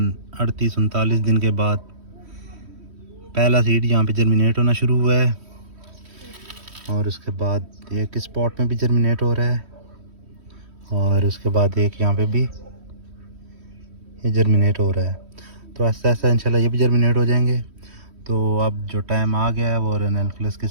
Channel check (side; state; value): left; late; 3.1 ms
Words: 38-39 दिन के बाद पहला सीड यहाँ पे जर्मिनेट होना शुरू हुआ है और उसके बाद एक स्पॉट में भी जर्मिनेट हो रहा है और उसके बाद एक यहाँ पे भी ये जर्मिनेट हो रहा है। तो ऐसा ऐसा इंशाल्लाह ये भी जर्मिनेट हो जाएंगे। तो अब जो टाइम आ गया है वो रेननकुलस के